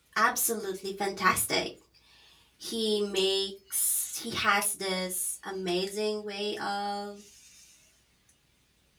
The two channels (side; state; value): both; identical; correlation 1.00